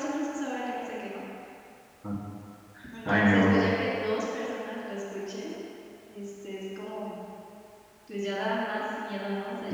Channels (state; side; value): identical; both; correlation 1.00